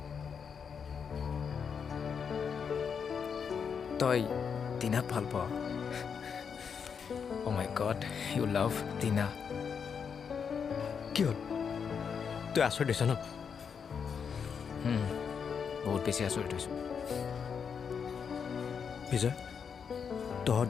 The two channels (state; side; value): quieter; right; 6.6 dB